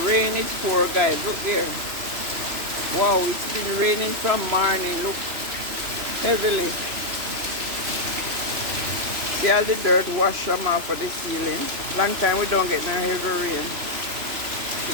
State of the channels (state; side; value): late; left; 3.0 ms